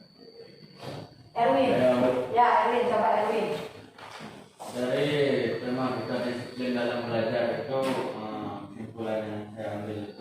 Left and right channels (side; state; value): both; identical; correlation 1.00